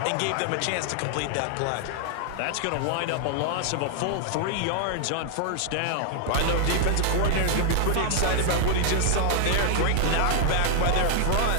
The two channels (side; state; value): both; different; correlation 0.00